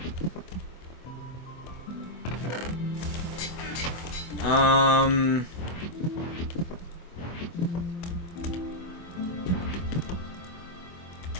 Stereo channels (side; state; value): right; late; 24 ms